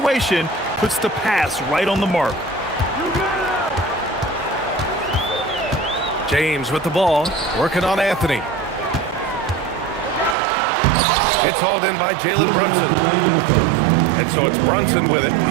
puts the pass right on the mark. James with the ball, working on Anthony. It's hauled in by Jalen Brunson. And so it's Brunson with it.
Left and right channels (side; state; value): left; drops out; at 10.4 s